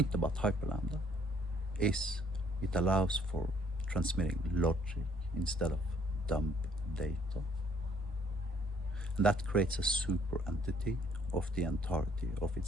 about hyperlambda is it allows for transmitting logic instead of dump data. And that creates a super entity of the entirety of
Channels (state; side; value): normal; both; correlation 0.63